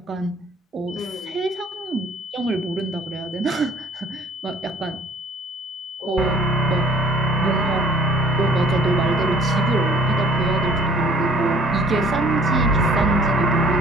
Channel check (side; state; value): both; normal; correlation 0.54